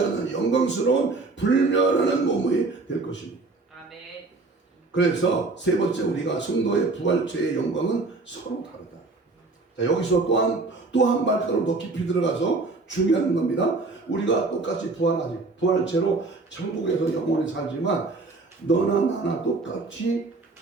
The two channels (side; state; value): left; quieter; 3.6 dB